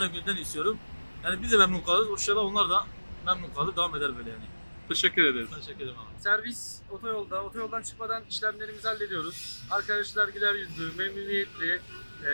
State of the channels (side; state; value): both; inverted; correlation -1.00